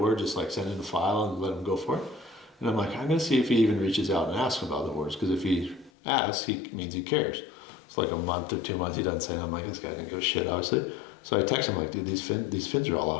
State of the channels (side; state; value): right; drops out; at 5.9 s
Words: Just like send in a file and let them go for it. And I'm like, I'm going to see if he even reaches out and asks about the boards. Because if he asks, he means he cares. It's like a month or 2 months he doesn't say. And I'm like, this guy didn't give a shit, obviously. So I text him like, dude, these fins are all